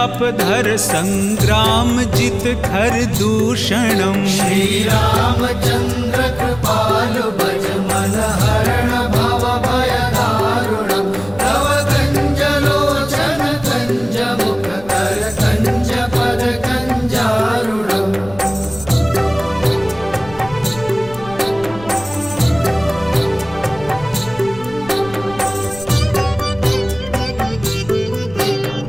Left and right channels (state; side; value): noise; left; rumble, 18 dB below the sound